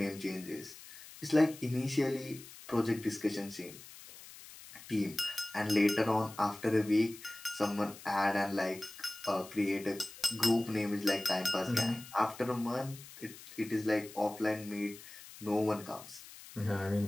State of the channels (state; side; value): noise; left; hiss, 17 dB below the sound